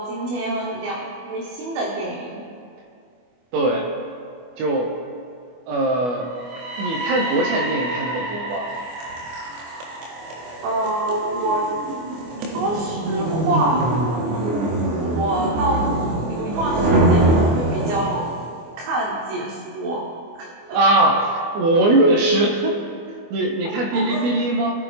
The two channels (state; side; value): late; left; 24 ms